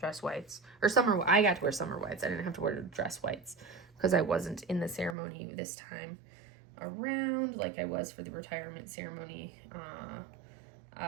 whites, or I got to wear summer whites. I didn't have to wear dress whites because I wasn't in the ceremony this time around like I was for the retirement ceremony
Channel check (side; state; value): left; drops out; at 5.2 s